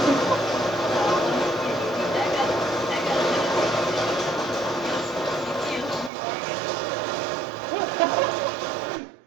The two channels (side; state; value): left; drops out; at 6.1 s